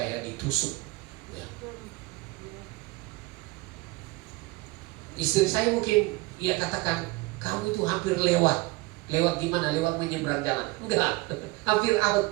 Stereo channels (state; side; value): quieter; left; 22.5 dB